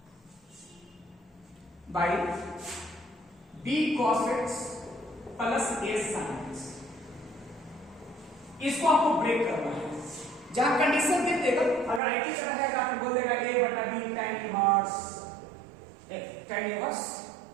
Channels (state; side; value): drops out; left; at 12.0 s